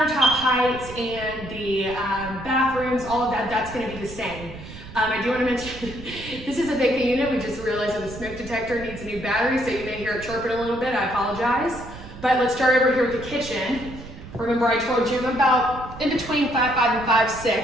heights and the bathrooms, all of that, that's going to be the same. I do want to mention, this is a vacant unit. We just realized that the smoke detector needs a new battery, so you may hear it chirping a little bit. I apologize. But let's start over here with the kitchen. Remember I told you I'm about in between 5'5" and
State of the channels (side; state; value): right; noise; rumble, 14 dB below the sound